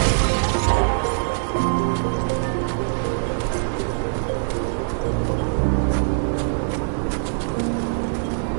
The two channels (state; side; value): silent; left; 57 dB below the other